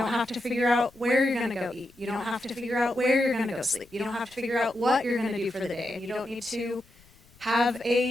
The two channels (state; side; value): noise; left; rumble, 28 dB below the sound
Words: have to figure out where you're going to go eat. You don't have to figure out where you're going to go sleep. You don't have to figure out what you're going to do for the day. You don't need to have